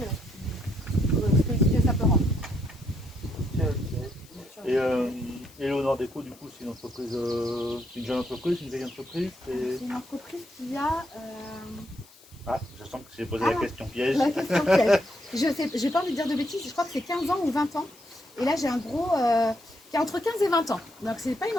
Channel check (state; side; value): noise; left; hiss, 25 dB below the sound